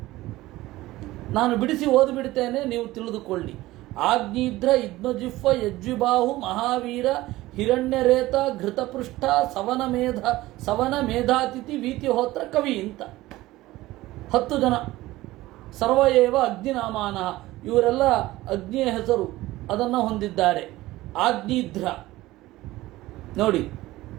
ನಾನು ಬಿಡಿಸಿ ಓದಿಬಿಡ್ತೇನೆ, ನೀವು ತಿಳಿದುಕೊಳ್ಳಿ. ಆಗ್ನಿದ್ರ ಇದ್ಮಜಿಹ್ವ ಯಜ್ವಿಬಾಹು ಮಹಾವೀರ ಹಿರಣ್ಯರೇತ ಘೃತಪೃಷ್ಠ ಸವನ ಮೇಧಾತಿಥಿ ವೀತಿಹೋತ್ರ ಕವಿ ಅಂತ 10 ಜನ. ಸರ್ವಯೇವ ಅಗ್ನಿನಾಮಾನ, ಇವರೆಲ್ಲ ಅಗ್ನಿಯ ಹೆಸರು ಅದನ್ನು ಹೊಂದಿದ್ದಾರೆ. ಆಗ್ನಿಧ್ರ ನೋಡಿ.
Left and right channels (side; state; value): left; quieter; 17.6 dB